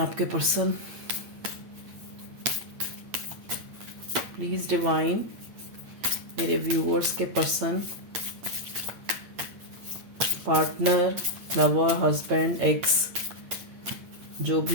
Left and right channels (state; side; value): late; left; 8.7 ms